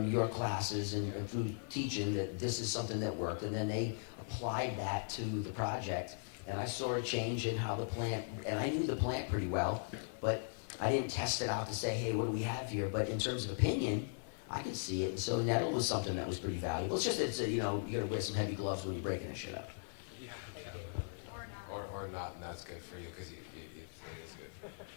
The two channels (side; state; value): right; silent; 52 dB below the other